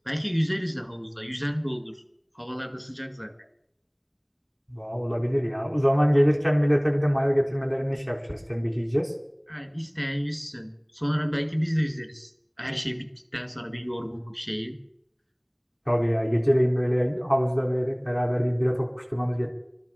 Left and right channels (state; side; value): identical; both; correlation 1.00